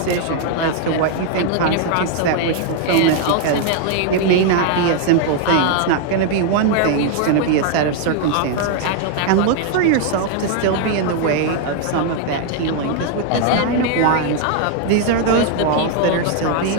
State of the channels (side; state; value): both; different; correlation 0.00